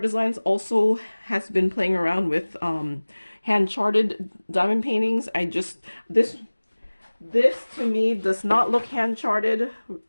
Designs also has been playing around with hand-charted diamond paintings. This to me does not look hand-charted,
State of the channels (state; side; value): inverted; both; correlation -1.00